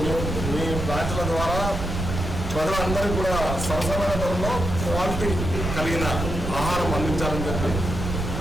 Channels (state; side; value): noise; right; rumble, 4 dB below the sound